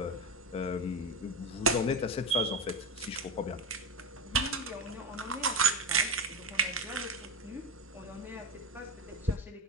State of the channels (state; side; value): normal; both; correlation 0.18